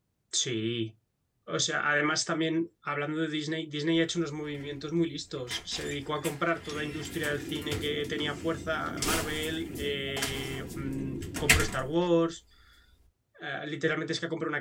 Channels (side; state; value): both; identical; correlation 1.00